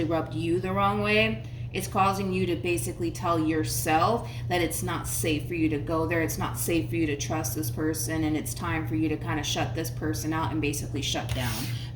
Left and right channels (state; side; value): identical; both; correlation 1.00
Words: rubbed you the wrong way, it's causing you to basically tell yourself that it's not safe for you to go there. It's not safe for you to trust this person, and it's time for you to kind of shut this person out and basically shut down